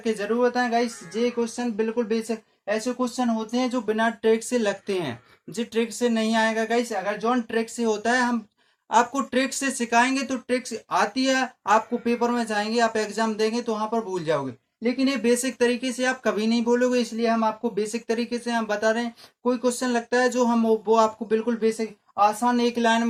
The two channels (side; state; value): both; identical; correlation 1.00